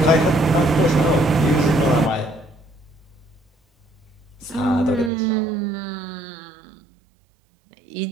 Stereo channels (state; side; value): drops out; left; at 5.1 s